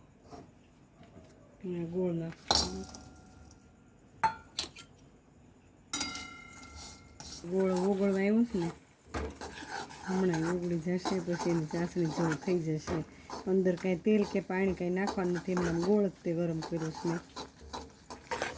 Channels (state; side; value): identical; both; correlation 1.00